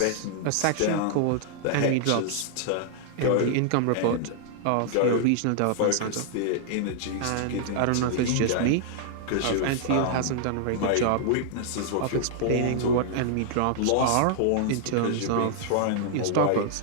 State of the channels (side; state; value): both; different; correlation -0.01